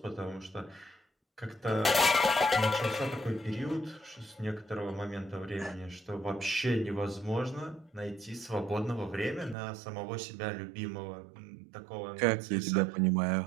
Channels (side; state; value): left; drops out; at 9.6 s